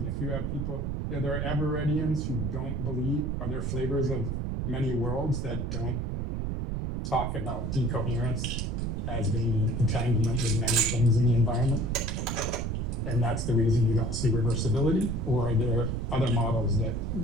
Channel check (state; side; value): noise; right; rumble, 2 dB below the sound